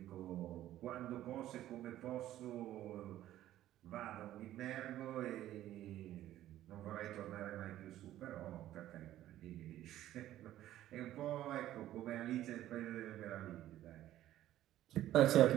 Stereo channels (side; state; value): left; quieter; 13.4 dB